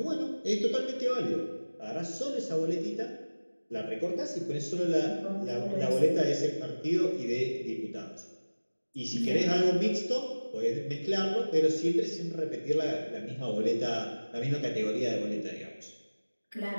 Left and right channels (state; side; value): inverted; both; correlation -1.00